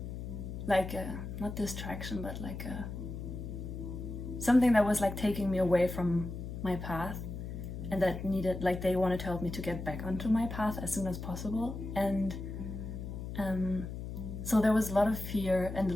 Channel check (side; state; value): left; noise; hum, 7 dB below the sound